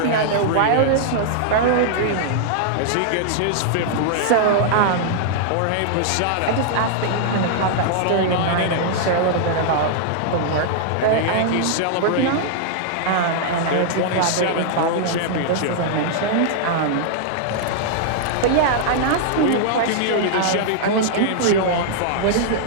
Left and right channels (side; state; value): both; different; correlation -0.01